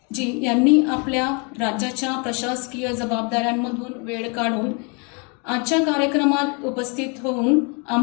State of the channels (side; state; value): right; quieter; 34.0 dB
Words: जी यांनी आपल्या राज्याच्या प्रशासकीय जबाबदाऱ्यांमधून वेळ काढून आजच्या कार्यक्रमात उपस्थित होऊन